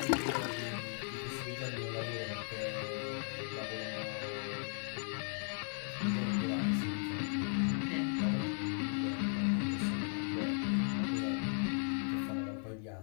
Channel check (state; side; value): silent; right; 53 dB below the other